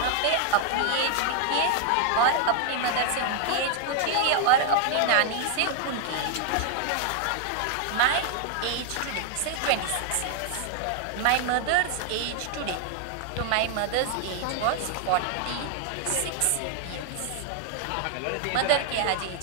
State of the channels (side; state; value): both; different; correlation 0.00